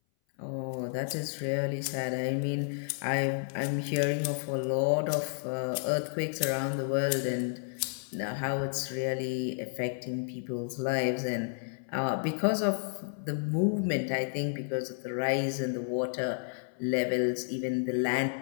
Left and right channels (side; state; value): right; silent; 57 dB below the other